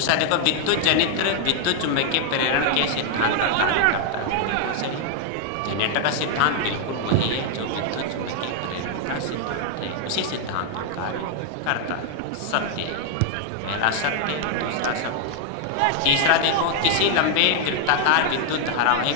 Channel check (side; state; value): both; different; correlation 0.00